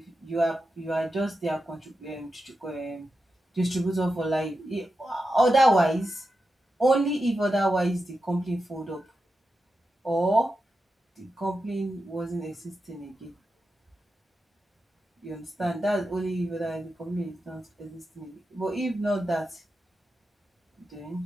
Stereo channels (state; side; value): normal; both; correlation 0.89